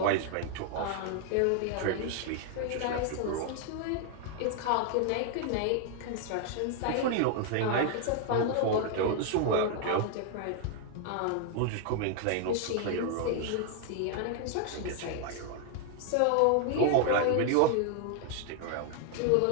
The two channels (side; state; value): both; different; correlation 0.00